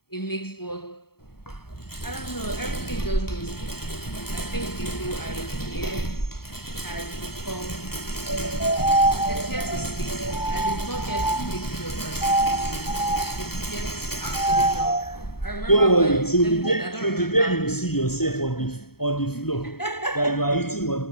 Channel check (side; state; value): right; late; 0.95 ms